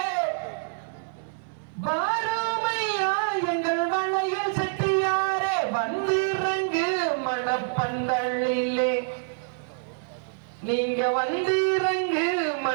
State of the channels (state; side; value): silent; left; digital silence